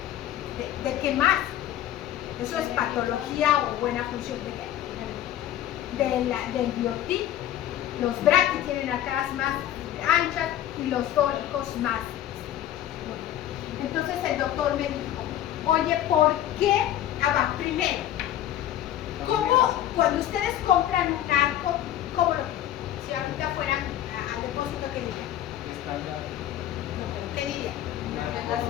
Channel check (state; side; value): quieter; right; 12.0 dB